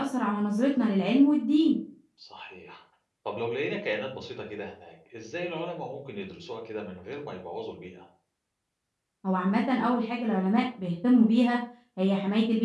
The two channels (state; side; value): identical; both; correlation 1.00